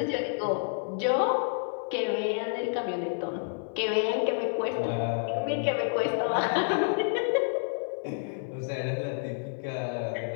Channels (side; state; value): right; silent; digital silence